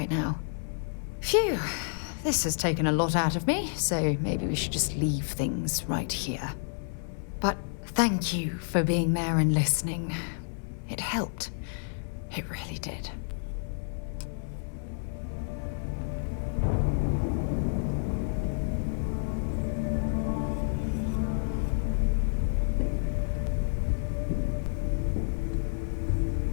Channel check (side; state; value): right; silent; 58 dB below the other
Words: now. Phew, this has taken a lot out of me, so maybe we should just leave things right here. But thank you for being there and listening. It helped. It really did.